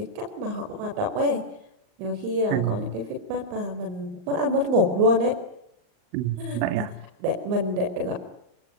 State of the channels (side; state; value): left; late; 39 ms